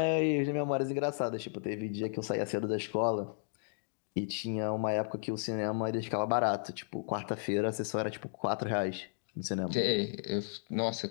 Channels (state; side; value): silent; right; digital silence